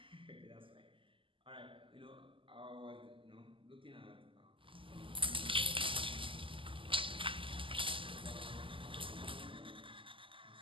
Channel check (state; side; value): late; left; 0.25 ms